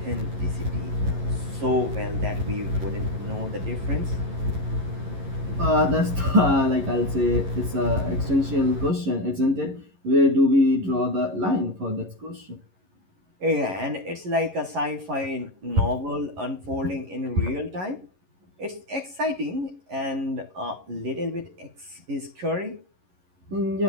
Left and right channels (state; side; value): late; left; 11 ms